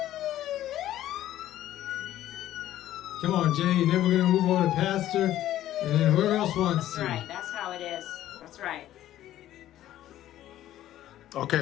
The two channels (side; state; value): right; quieter; 13.1 dB